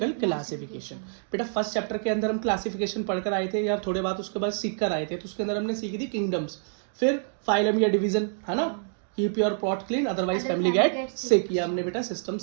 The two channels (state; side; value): silent; left; digital silence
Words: क्लासिफिकेशन। बेटा फर्स्ट चैप्टर के अंदर हम क्लासिफिकेशन पढ़कर आए थे या थोड़े बात उसके बाद सीख कर आए थे, तो उसके अंदर हमने सीखी थी किंगडम्स, फिर फाइलम या डिवीजन, है ना, keep your pot clean otherwise family get sick. ये हमने बेटा सिस्टम